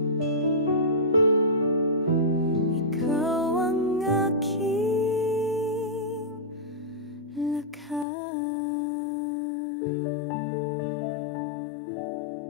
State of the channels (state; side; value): drops out; right; at 8.1 s